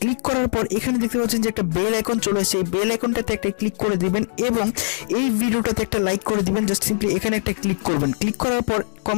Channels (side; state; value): right; silent; digital silence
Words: ক্লিক করার পর এখানে দেখতে পাচ্ছেন যে একটা বেল আইকন চলে আসছে। এই বেল আইকনটাতে একটা ক্লিক করে দিবেন এবং এই ভিডিওটাতে একটা লাইক করে দিবেন। জাস্ট সিম্পলি এখানে একটা ক্লিক করবেন। ক্লিক করার পর